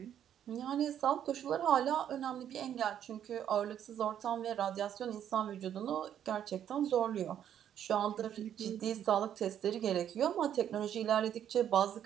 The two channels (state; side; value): quieter; left; 9.9 dB